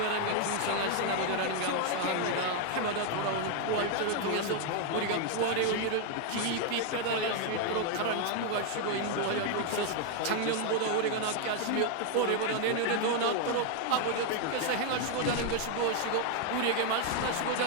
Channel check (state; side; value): different; both; correlation 0.00